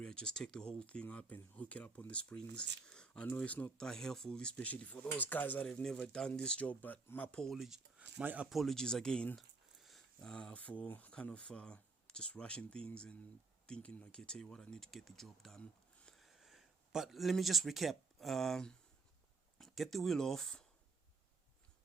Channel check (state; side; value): quieter; left; 4.2 dB